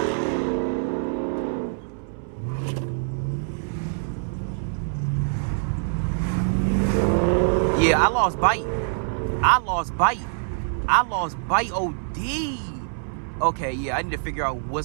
Yeah, I lost bite. I lost bite OD. Okay, yeah, I need to figure out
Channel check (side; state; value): left; silent; 62 dB below the other